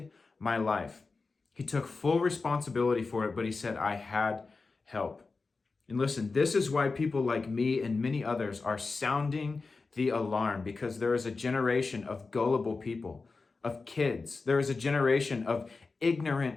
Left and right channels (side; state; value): right; quieter; 4.1 dB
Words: my life. He took full responsibility for it, but he said, I had help. And listen, this is why people like me and many others are sounding the alarm, because there is a generation of gullible people, of kids. There is a generation of